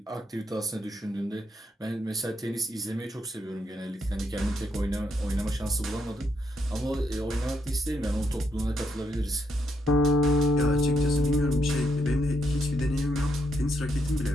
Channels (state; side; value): normal; both; correlation 0.78